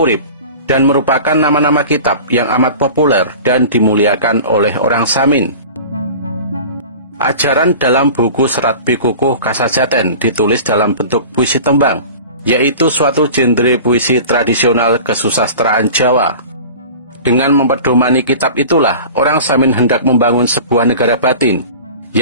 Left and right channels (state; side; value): inverted; both; correlation -0.38